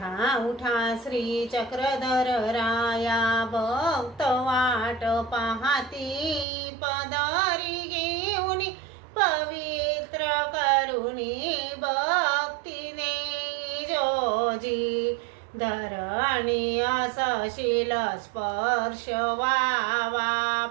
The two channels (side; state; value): left; drops out; at 6.5 s